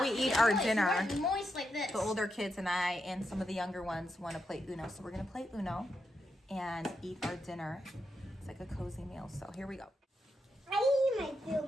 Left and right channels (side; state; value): both; normal; correlation 0.84